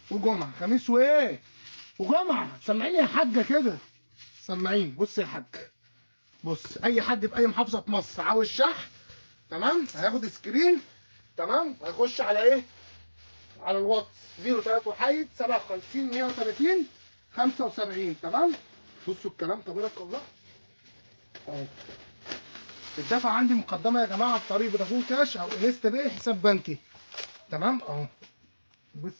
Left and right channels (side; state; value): both; inverted; correlation -1.00